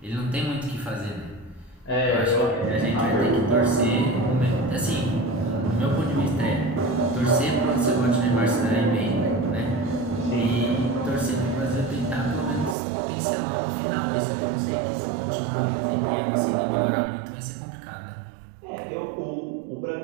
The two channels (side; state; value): left; drops out; at 12.8 s